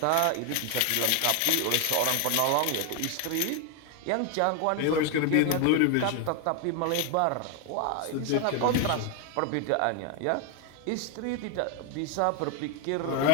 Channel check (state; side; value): different; both; correlation 0.01